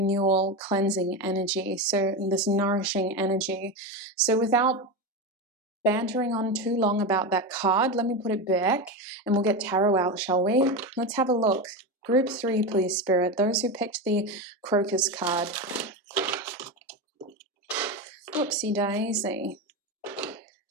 cleansing energy. So this nourishing energy. So without bantering on too long about that card, let me put it back and we'll get Tarot out, shall we? Let's have a look. Group 3, please, Spirit. Those who picked the crocus card. Whoopsie daisy.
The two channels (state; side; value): normal; both; correlation 0.18